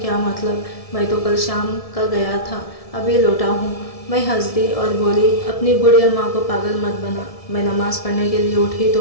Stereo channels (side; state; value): right; late; 1.7 ms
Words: मतलब, मैं तो कल शाम का गया था, अभी लौटा हूँ। मैं हंस दी और बोली, अपनी बुढ़िया माँ को पागल मत बना। मैं नमाज़ पढ़ने के लिए उठी